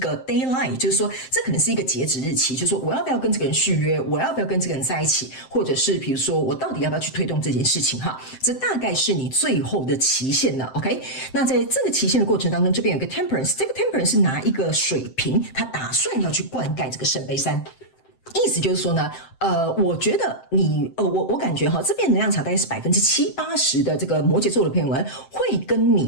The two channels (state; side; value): late; right; 7.7 ms